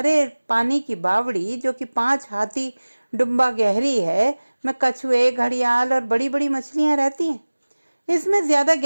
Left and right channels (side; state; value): both; inverted; correlation -1.00